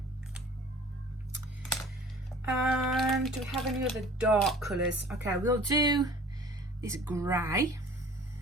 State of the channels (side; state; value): both; normal; correlation 0.47